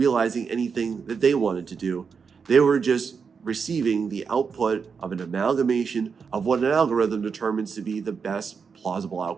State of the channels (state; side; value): quieter; left; 5.8 dB